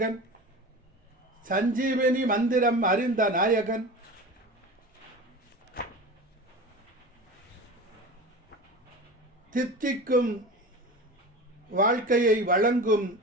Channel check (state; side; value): normal; both; correlation 0.32